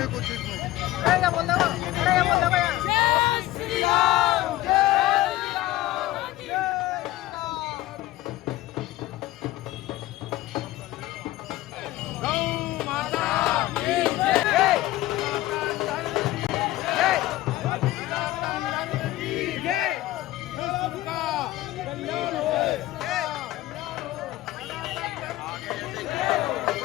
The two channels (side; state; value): right; quieter; 16.3 dB